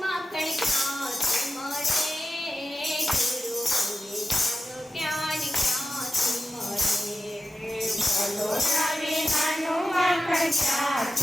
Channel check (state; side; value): normal; both; correlation 0.93